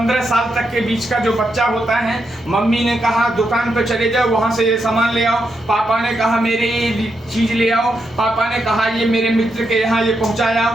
साल तक के बीच का जो बच्चा होता है, मम्मी ने कहा दुकान पे चले जाओ, वहां से ये सामान ले आओ, पापा ने कहा मेरे ये चीज ले आओ, पापा ने कहा ये मेरे मित्र के यहाँ ये पहुंचाया,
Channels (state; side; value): normal; both; correlation 0.83